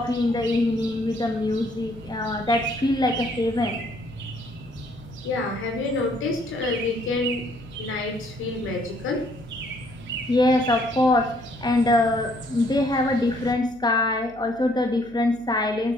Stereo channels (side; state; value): left; noise; hum, 25 dB below the sound